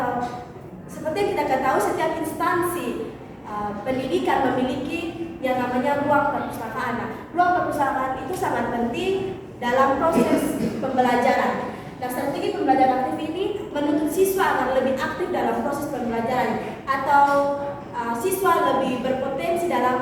seperti yang kita ketahui setiap instansi pendidikan memiliki yang namanya ruang perpustakaan. Nah, ruang perpustakaan itu sangat penting dalam proses pembelajaran. Nah, strategi pembelajaran aktif ini menuntut siswa agar lebih aktif dalam proses pembelajaran atau siswa lebih berpotensi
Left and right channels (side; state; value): both; identical; correlation 1.00